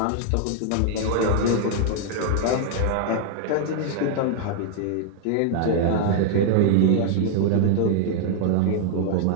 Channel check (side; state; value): both; different; correlation 0.00